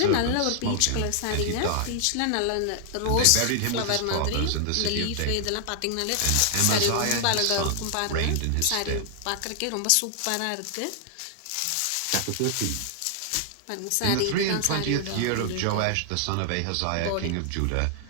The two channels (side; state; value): both; different; correlation 0.00